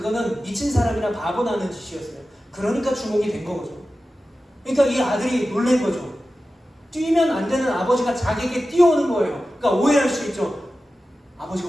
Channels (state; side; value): normal; both; correlation 0.94